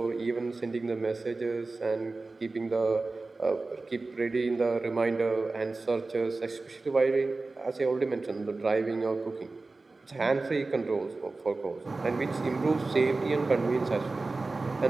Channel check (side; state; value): left; quieter; 3.5 dB